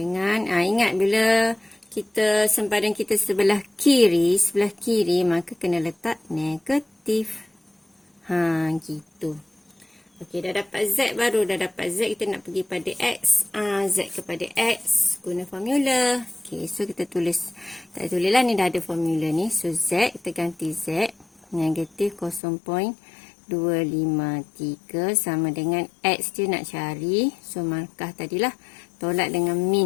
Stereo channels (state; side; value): drops out; right; at 22.4 s